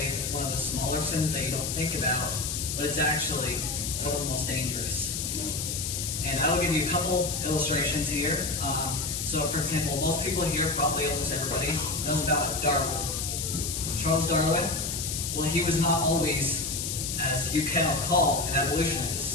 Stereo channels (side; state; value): left; noise; hiss, 3 dB below the sound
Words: one of the smaller sins that you don't think about, but it's actually one of the most dangerous. And I will give you a couple illustrations here. So, for example, most people here, probably almost everybody, knows about Darwin. Charles Darwin, well, he was not always, as you cannot call, an